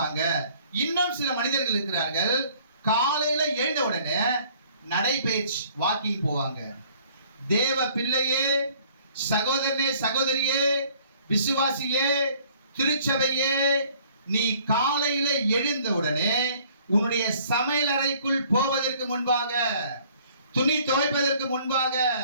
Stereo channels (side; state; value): both; inverted; correlation -0.57